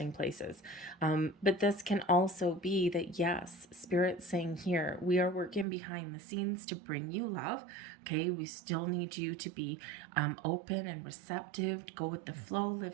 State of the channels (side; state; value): left; drops out; at 5.7 s